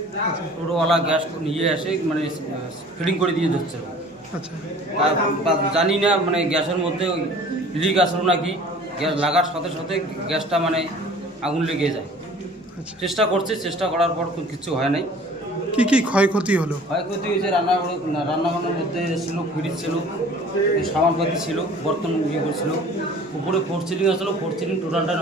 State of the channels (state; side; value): normal; both; correlation 0.48